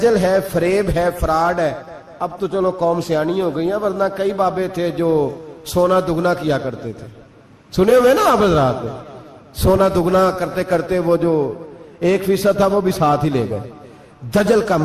ہے، فریب ہے، فراڈ ہے۔ اب تو چلو قوم سیانی ہو گئی ہیں، ورنہ کئی بابے تھے جو سونا دگنا کیا کرتے تھے، سنے ہوئے نا آپ حضرات؟ سونا دگنا کرتے کرتے وہ جو 1% تھا وہ بھی ساتھ ہی لے گئے۔ دجل کا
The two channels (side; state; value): both; identical; correlation 1.00